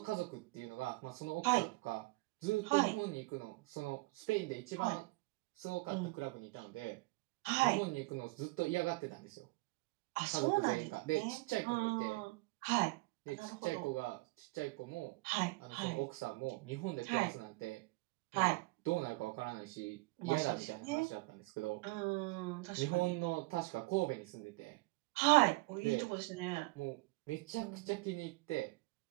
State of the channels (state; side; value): quieter; left; 24.1 dB